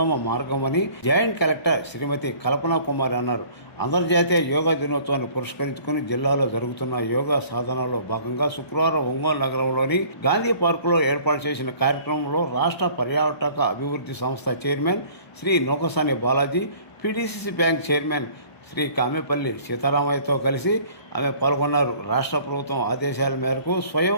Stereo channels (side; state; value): right; late; 1.0 ms